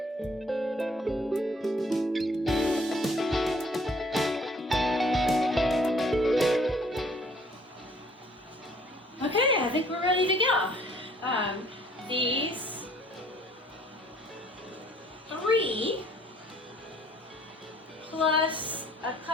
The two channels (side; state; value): both; normal; correlation 0.58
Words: Okay, I think we're ready to go. These 3 plus a